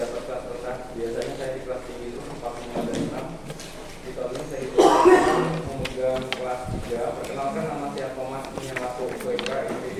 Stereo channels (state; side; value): identical; both; correlation 1.00